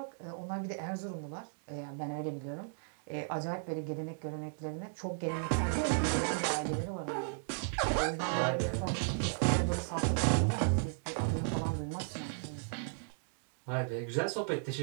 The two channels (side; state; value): left; silent; digital silence